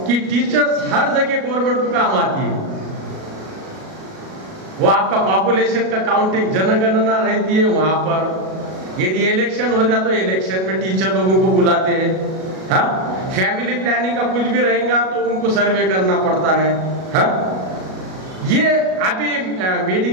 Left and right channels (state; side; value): late; left; 37 ms